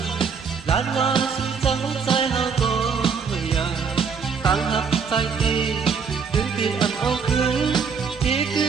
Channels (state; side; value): quieter; left; 6.0 dB